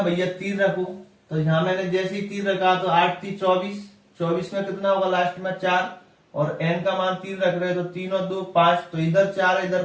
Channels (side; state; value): both; identical; correlation 1.00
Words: भैया 3 रखो, तो यहाँ मैंने जैसे ही 3 रखा तो 8 3 24, 24 में कितना होगा लास्ट में 4, और n का मान 3 रख रहे, तो 3 और 2 5, तो इधर 4 है इधर